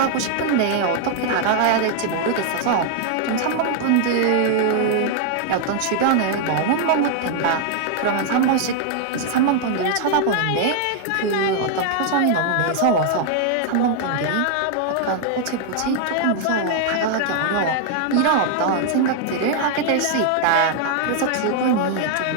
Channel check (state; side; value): different; both; correlation 0.00